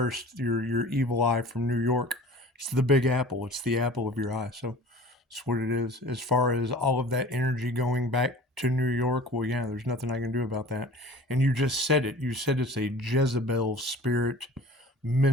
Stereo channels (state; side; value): normal; both; correlation 0.43